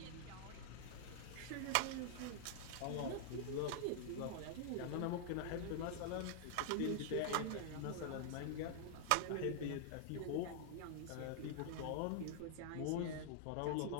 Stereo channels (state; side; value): different; both; correlation -0.01